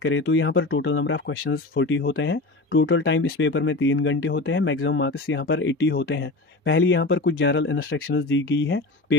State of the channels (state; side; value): quieter; right; 3.1 dB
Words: करें तो यहाँ पर टोटल नंबर ऑफ क्वेश्चंस 40 होते हैं। टोटल टाइम इस पेपर में 3 घंटे होते हैं। मैक्सिमम मार्क्स यहाँ पर 80 होते हैं। पहले यहाँ पर कुछ जनरल इंस्ट्रक्शंस दी गई है